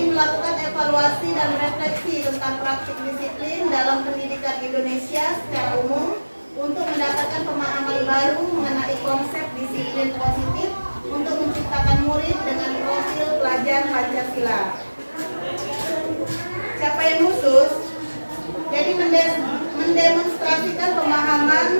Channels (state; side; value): inverted; both; correlation -1.00